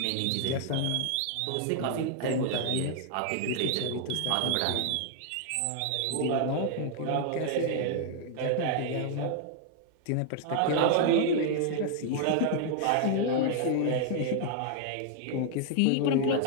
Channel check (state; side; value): different; both; correlation 0.00